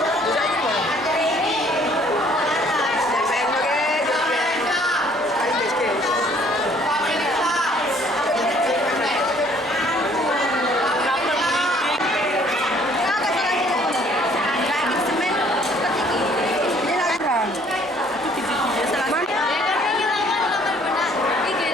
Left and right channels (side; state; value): both; normal; correlation 0.59